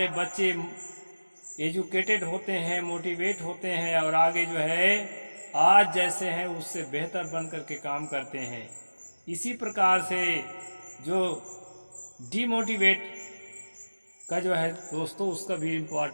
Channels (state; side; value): inverted; both; correlation -1.00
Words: बच्चे एजुकेटेड होते हैं, मोटिवेट होते हैं और आगे जो है आज जैसे हैं उससे बेहतर बन करके काम करते हैं। इसी प्रकार से जो डीमोटिवेट का जो है दोस्तों, उसका भी